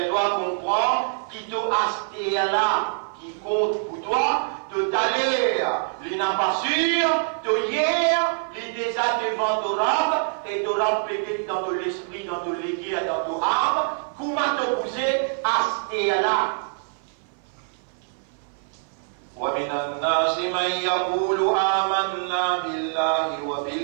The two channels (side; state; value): left; silent; 56 dB below the other